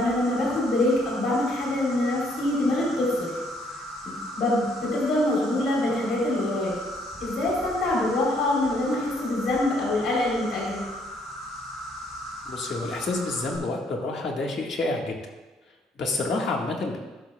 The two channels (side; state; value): both; normal; correlation 0.67